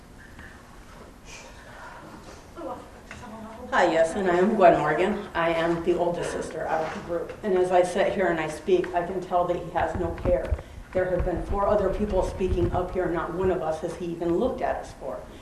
Hi, yes, and I am Gwen Morgan. I am the oldest sister out of the group. And as I sit here and I speak, I can tell that he has no care. There have been 4 other people speaking up here, not one of us has he even looked at us for.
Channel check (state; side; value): identical; both; correlation 1.00